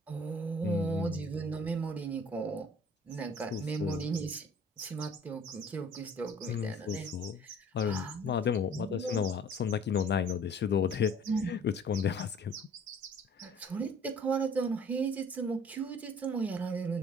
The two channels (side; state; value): both; normal; correlation 0.52